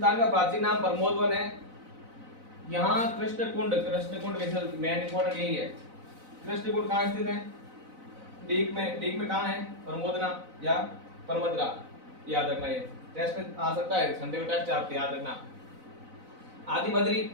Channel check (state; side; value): late; left; 4.0 ms